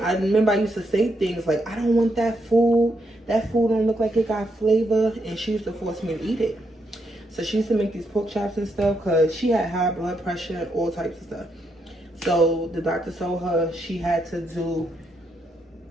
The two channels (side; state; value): both; normal; correlation 0.79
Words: I remember I used to say things like, I don't want that food. That food don't look like it got flavor. And she used to force me to eat it. So she used to make these pork chops and stuff because she had high blood pressure and all types of stuff. So the doctor told her she had to do